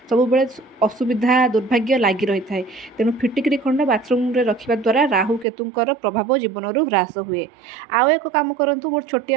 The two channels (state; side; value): drops out; left; at 5.5 s